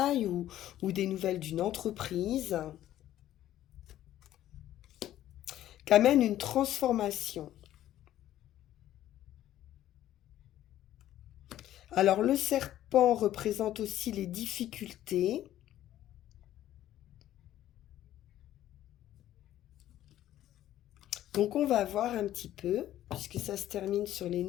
ou des nouvelles d'une entreprise qu'amène une transformation. Alors le serpent représente aussi les difficultés. Donc on va voir un petit peu, puisque ça se termine sur les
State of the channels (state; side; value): quieter; right; 12.9 dB